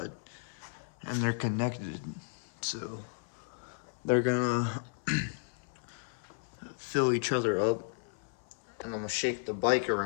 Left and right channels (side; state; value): right; silent; 55 dB below the other